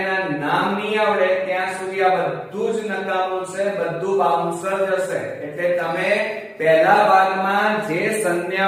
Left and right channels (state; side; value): identical; both; correlation 1.00